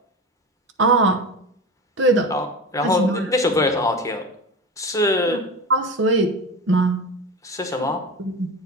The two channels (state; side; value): normal; both; correlation 0.27